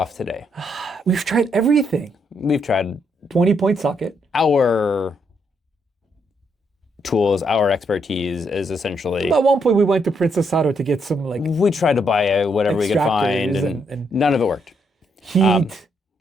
today. We've tried everything. We've tried 20-point socket. our tools, our expertise is essentially. At one point we went to Princess Auto to get some We tried to buy whatever we could find, and none of it worked. Heat.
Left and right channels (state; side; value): normal; both; correlation 0.75